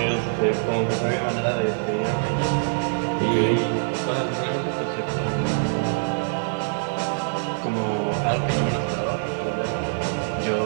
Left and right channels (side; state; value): left; silent; digital silence